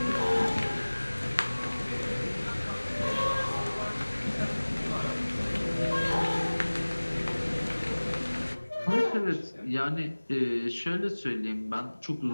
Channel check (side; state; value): both; inverted; correlation -1.00